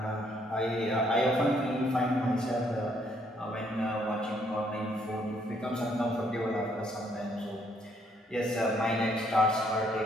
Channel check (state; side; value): normal; both; correlation 0.69